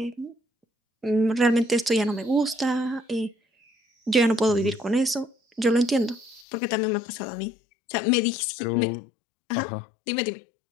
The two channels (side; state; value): right; drops out; at 6.5 s